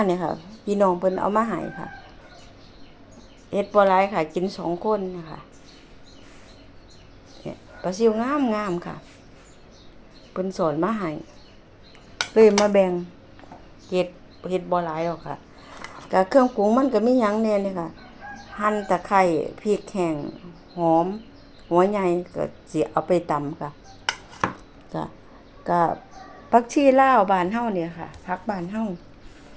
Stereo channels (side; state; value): both; identical; correlation 1.00